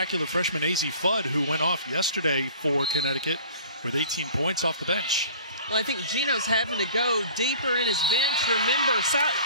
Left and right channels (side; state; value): both; inverted; correlation -0.47